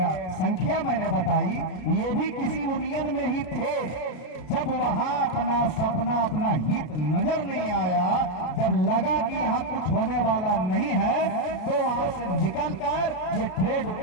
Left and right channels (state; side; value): late; right; 33 ms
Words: संख्या मैंने बताई, ये भी किसी यूनियन में ही थे। जब वहां अपना सपना, अपना हित नजर नहीं आया, जब लगा कि यहाँ कुछ होने वाला नहीं है, तो वहां से निकलकर ये ट्रेड